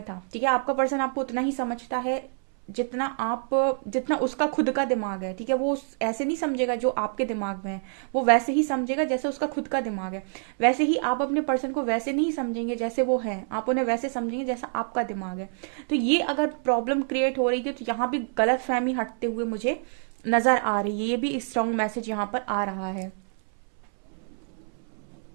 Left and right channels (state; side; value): silent; left; 60 dB below the other